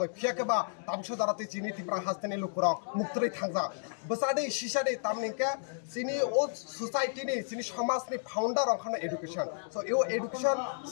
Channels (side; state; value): right; silent; digital silence